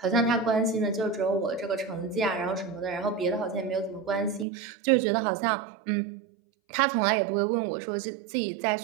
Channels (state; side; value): drops out; left; at 4.5 s